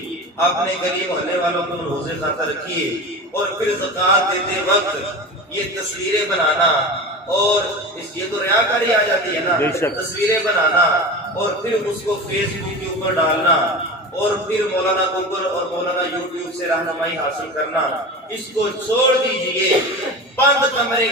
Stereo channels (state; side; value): normal; both; correlation 0.30